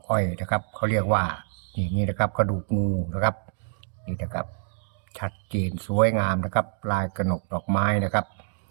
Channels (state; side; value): silent; left; digital silence